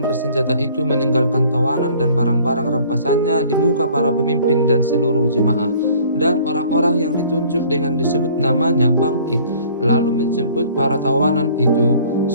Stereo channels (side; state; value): both; inverted; correlation -0.53